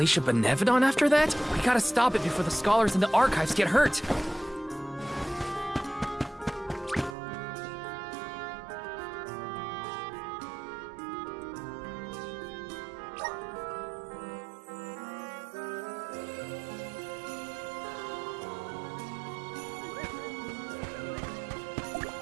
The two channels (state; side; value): drops out; left; at 7.2 s